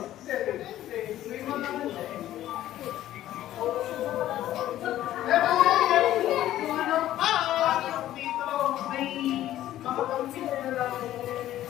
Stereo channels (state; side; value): quieter; right; 13.3 dB